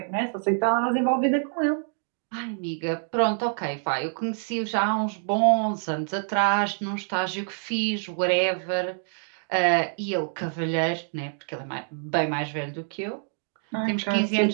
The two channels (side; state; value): left; silent; 61 dB below the other